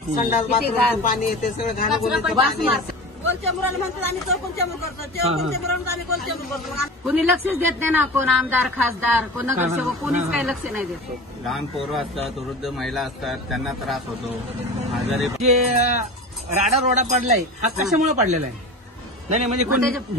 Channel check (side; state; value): both; normal; correlation 0.33